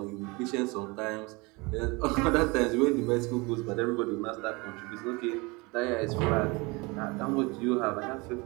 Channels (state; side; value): quieter; left; 26.0 dB